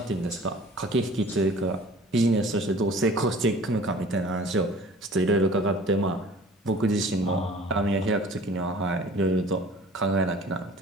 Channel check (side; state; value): both; normal; correlation 0.47